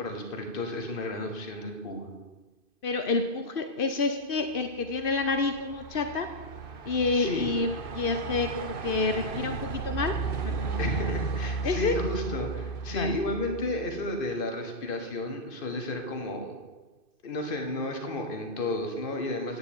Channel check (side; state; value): right; late; 2.5 ms